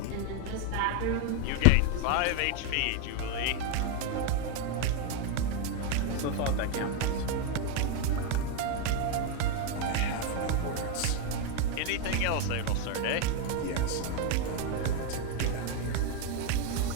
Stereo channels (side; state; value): both; different; correlation 0.01